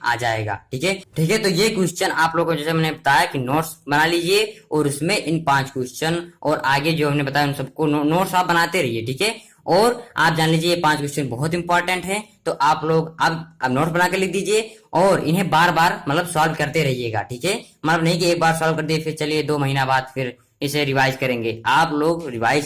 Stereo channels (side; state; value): both; identical; correlation 1.00